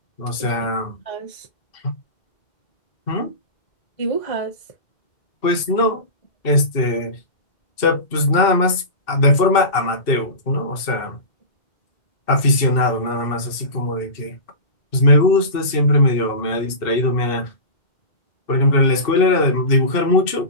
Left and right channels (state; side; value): late; right; 2.6 ms